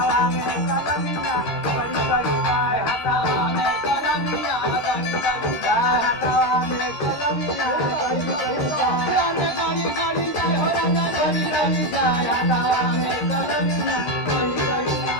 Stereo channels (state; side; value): late; right; 13 ms